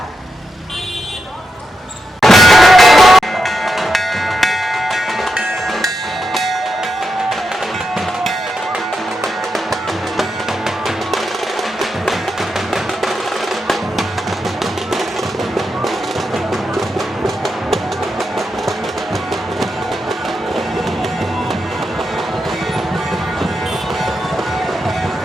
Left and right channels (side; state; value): both; normal; correlation 0.86